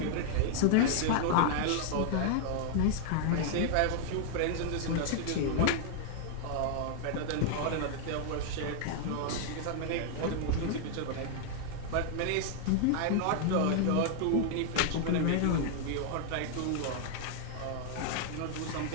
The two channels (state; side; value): different; both; correlation 0.00